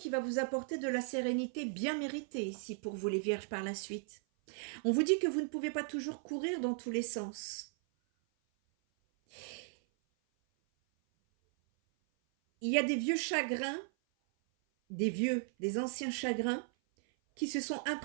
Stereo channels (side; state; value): left; silent; 53 dB below the other